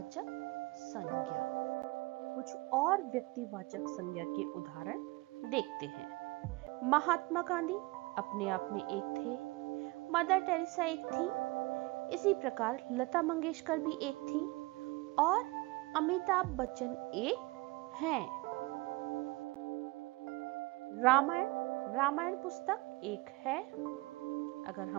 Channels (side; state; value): left; quieter; 23.6 dB